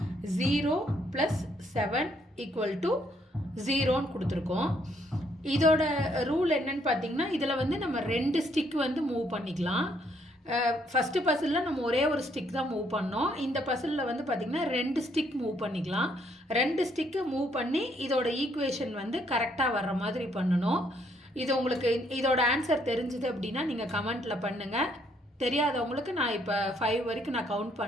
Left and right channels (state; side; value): normal; both; correlation 0.69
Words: 0 + 7 = 0ன்னு கொடுத்துருக்கோம். இதோட ரூல் என்னன்னு பார்த்தீங்கன்னா இதில் வந்து நம்ம 2 ஸ்டிக் வந்து மூவ் பண்ணிக்கலாம். ஃபஸ்ட்டு பசிலில் நம்ம ஒரே ஒரு ஸ்டிக் தான் மூவ் பண்ணோம். இந்த பசிலில் வந்து பார்த்திங்கன்னா 2 ஸ்டிக் மூவ் பண்ணிக்கலாம். 2 ஸ்டிக்கு மூவ் பண்ணி இதோட ஈக்குவேஷன் வந்து கரெக்டாக வர்ற மாதிரி பண்ணணும். இது உங்களுக்கு இதோட ஆன்சர் தெரிஞ்சுது அப்படின்னா நீங்கள் கமெண்ட்டில் பண்ணுங்கள். தெரியாதவங்களுக்கு நான் இப்போ 5 வரைக்கும் நான் கவுண்ட்